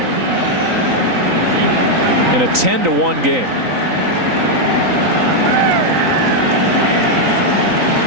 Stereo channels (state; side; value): late; left; 3.8 ms